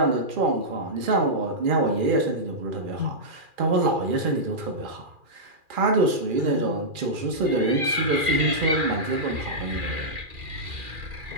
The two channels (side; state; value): left; late; 2.4 ms